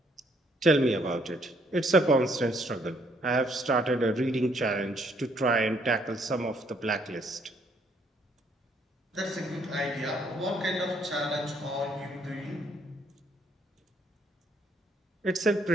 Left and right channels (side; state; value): both; normal; correlation 0.68